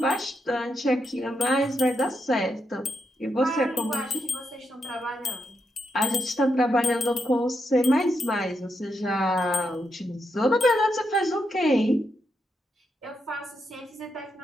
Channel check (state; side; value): normal; both; correlation 0.82